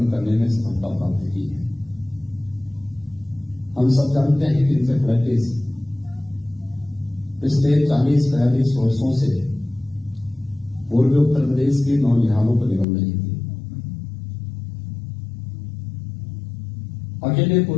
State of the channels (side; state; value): right; drops out; at 12.9 s